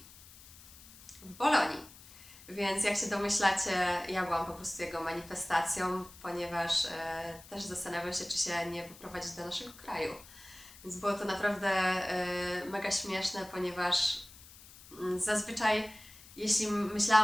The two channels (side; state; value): left; noise; hiss, 20 dB below the sound